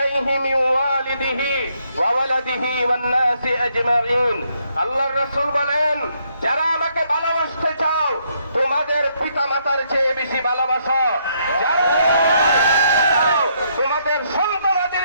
মিন ওয়ালিদিহি ওয়া ওয়ালাদিহি ওয়ান নাসি আজমাইন। আল্লাহর রাসূল বলেন, যারা আমাকে ভালোবাসতে চাও তোমাদের পিতামাতার চেয়ে বেশি ভালোবাসো, যারা তোমাদের সন্তানাদের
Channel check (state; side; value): inverted; both; correlation -0.73